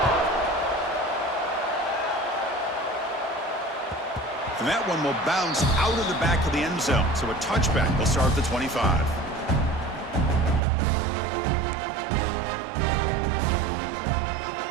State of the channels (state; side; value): drops out; left; at 10.6 s